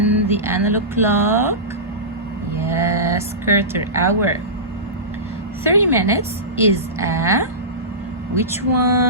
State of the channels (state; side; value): normal; both; correlation -0.20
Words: the analog clock? Yes, quarter hour. 30 minutes is which